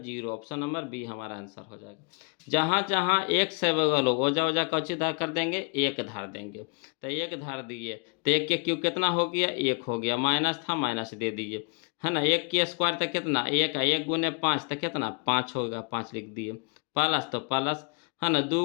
0, ऑप्शन नंबर बी हमारा आंसर हो जाएगा। जहाँ जहाँ एक से बगल हो ओजा ओजा कौची धार कर देंगे, एक धार देंगे, तो एक धार दिए, तो एक के क्यूब कितना हो गया, एक हो गया, माइनस था माइनस दे दिए, है ना, एक के स्क्वायर तो कितना एक है, एक गुने 5 तो कितना 5 होगा, 5 लिख दिए, प्लस तो प्लस, है ना, 2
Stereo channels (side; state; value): right; quieter; 35.3 dB